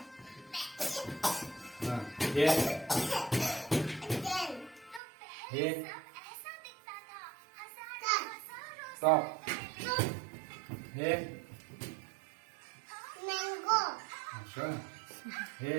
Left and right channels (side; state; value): left; drops out; at 5.0 s